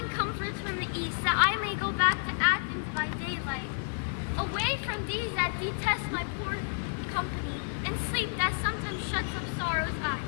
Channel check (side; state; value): right; silent; 57 dB below the other